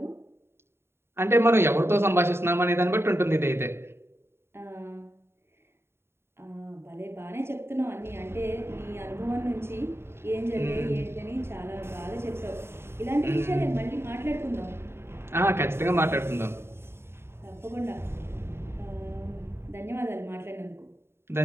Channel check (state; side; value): late; left; 0.12 ms